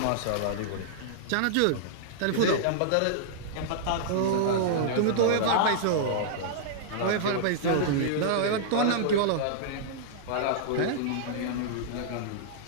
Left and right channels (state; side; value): different; both; correlation -0.02